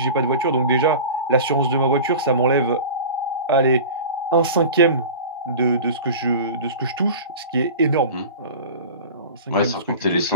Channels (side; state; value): both; inverted; correlation -0.36